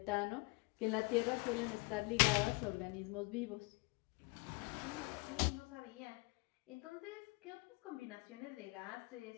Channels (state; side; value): quieter; right; 28.9 dB